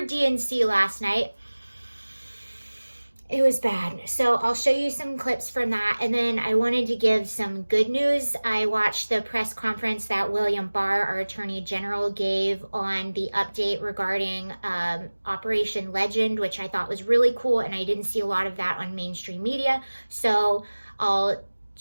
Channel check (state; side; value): inverted; both; correlation -1.00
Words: DNC last night. It was bad. So I'll show you some clips from that. And then I wanted to give some good news. I watched the press conference that William Barr, our Attorney General, gave on the update regarding Operation LeGend, which I thought was really cool. And I didn't see a lot of that on mainstream media. So I'll